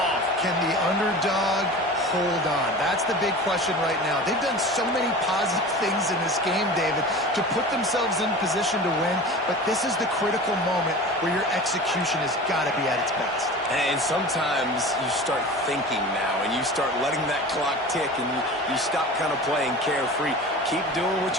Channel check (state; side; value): normal; both; correlation 0.35